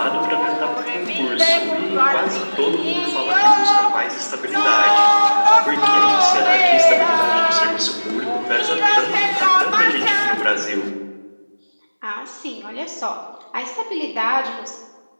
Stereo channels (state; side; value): inverted; both; correlation -1.00